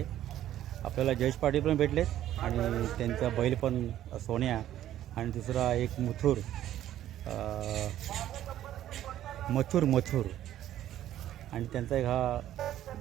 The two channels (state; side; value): quieter; left; 12.4 dB